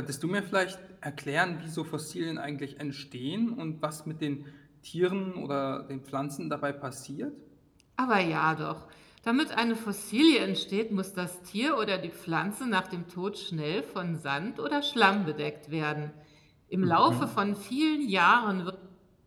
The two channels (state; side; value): identical; both; correlation 1.00